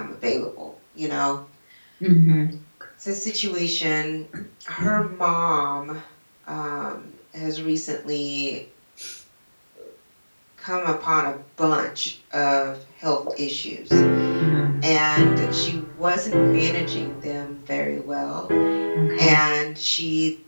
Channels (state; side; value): inverted; both; correlation -1.00